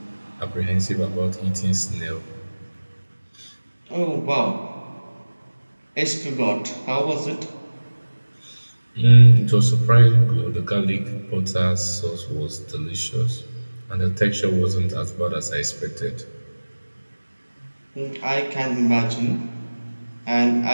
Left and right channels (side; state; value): both; inverted; correlation -1.00